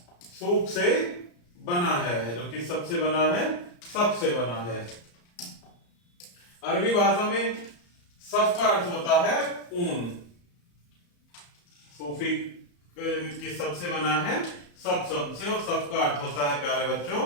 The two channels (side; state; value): right; late; 34 ms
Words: सूफ से बना है, जो कि सबसे बना है, सबसे बना है। अरबी भाषा में सफ का अर्थ होता है ऊन। सूफी की सबसे बना है सब से, और सब का अर्थ होता है प्यारे बच्चों